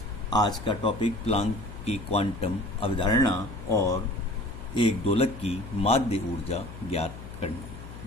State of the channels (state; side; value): noise; left; hum, 13 dB below the sound